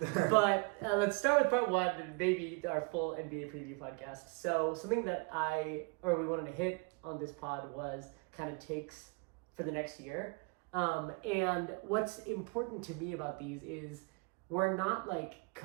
But let's start with part 1 and maybe our full NBA preview podcast. So something that we wanted to hit on this pod was kind of takes for the next year. And what's important to me about these is we're not like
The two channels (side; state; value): left; quieter; 31.3 dB